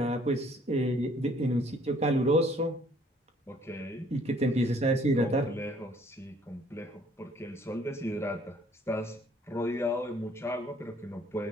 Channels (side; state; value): both; normal; correlation 0.60